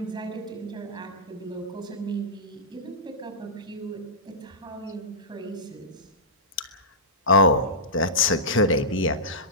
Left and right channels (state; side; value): normal; both; correlation -0.18